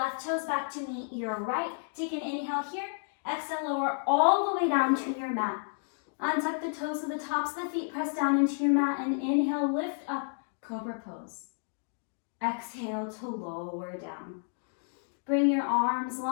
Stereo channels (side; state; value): right; silent; digital silence